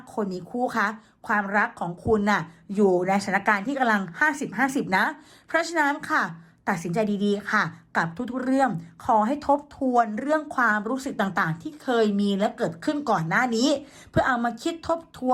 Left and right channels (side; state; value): both; identical; correlation 1.00